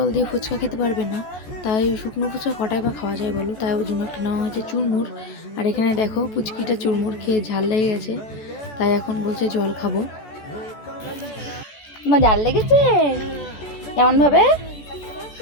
দিয়ে ফুচকা খেতে পারবে না, তাই শুকনো ফুচকা কটায় বা খাওয়া যায় বলো, তাই ওর জন্য একটা নেওয়া হয়েছে চুরমুর। আর এখানে দেখো পুচকিটা চুরমুর খেয়ে ঝাল লেগে গেছে, তাই এখন বলছে জল খাবো। তোমার ঝাল লেগেছে কেমন ভাবে?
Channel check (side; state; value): right; late; 14 ms